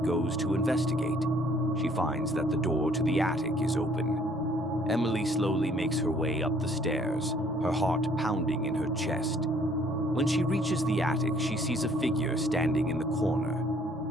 goes to investigate. She finds that the door to the attic is open. Emily slowly makes her way up the stairs, her heart pounding in her chest. When she reaches the attic, she sees a figure standing in the corner.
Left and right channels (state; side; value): normal; both; correlation 0.61